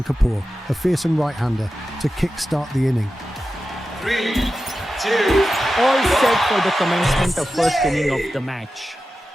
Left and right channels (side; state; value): both; normal; correlation 0.92